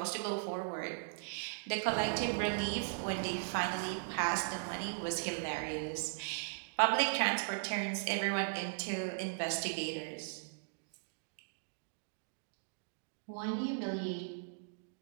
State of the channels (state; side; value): silent; left; digital silence